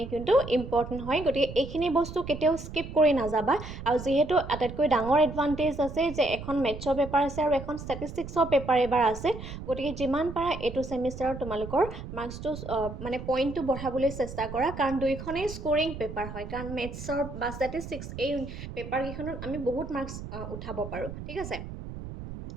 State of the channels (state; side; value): noise; right; rumble, 10 dB below the sound